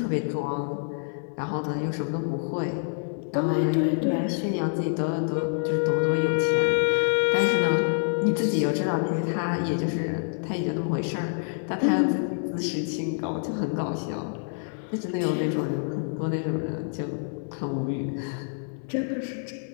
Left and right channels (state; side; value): silent; right; 56 dB below the other